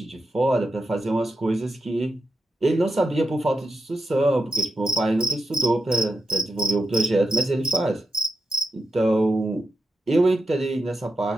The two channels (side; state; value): both; normal; correlation 0.85